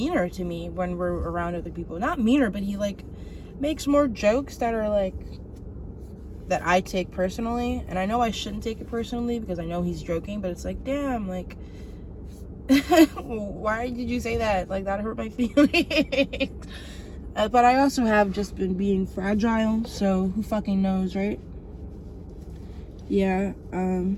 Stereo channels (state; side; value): identical; both; correlation 1.00